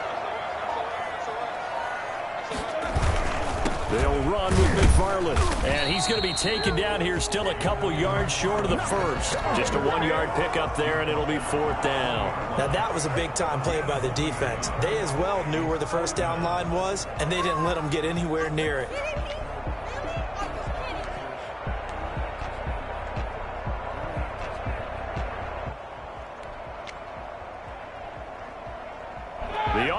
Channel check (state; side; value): identical; both; correlation 1.00